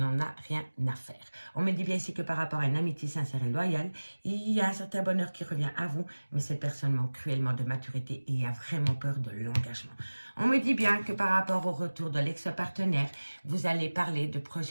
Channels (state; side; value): inverted; both; correlation -1.00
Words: a rien à faire. On me dit bien ici que par rapport à une amitié sincère et loyale, il y a un certain bonheur qui revient à vous, mais cette personne manque cruellement de maturité et a vraiment peur de l'engagement. On me dit bien que par rapport au retour de l'ex-partenaire, vous allez parler de